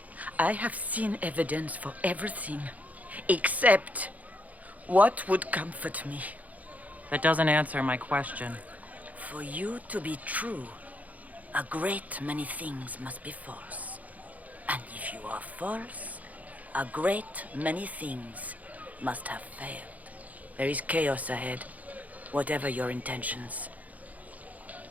I have seen evidence for everything, except what would comfort me. That doesn't answer my question. For you to be true, a great many things must be false. And if you are false, a great many things must have failed. There is chaos ahead, whatever your intentions.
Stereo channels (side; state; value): left; late; 0.075 ms